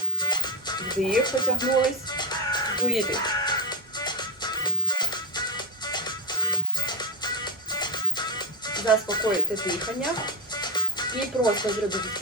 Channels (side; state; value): both; normal; correlation -0.04